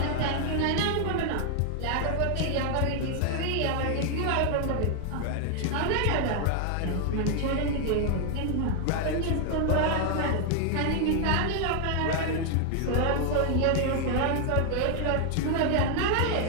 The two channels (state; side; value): different; both; correlation 0.00